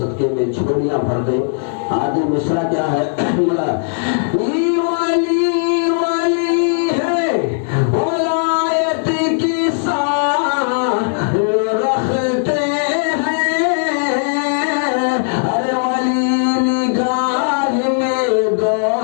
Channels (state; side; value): silent; right; digital silence